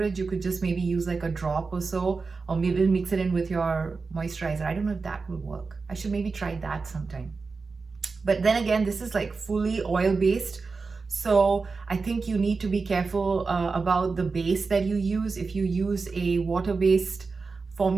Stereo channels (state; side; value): quieter; left; 4.4 dB